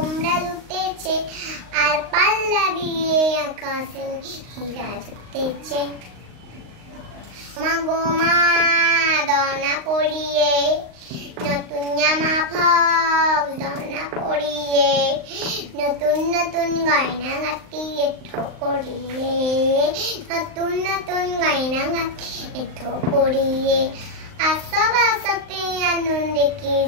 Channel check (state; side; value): late; left; 38 ms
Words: জুটেছে, আর পাল্লা দিয়ে আকাশে হীরা জুটেছে। মা গো মা দনা পড়িয়ে, নতুন জামা ফক দনা পড়িয়ে, নতুন নতুন গয়না গাঁটিয়ে ঠোকরিয়ে, নতুন নতুন গয়না গাঁটিয়ে ঠোকরিয়ে, আসব আসতে আনন্দে কে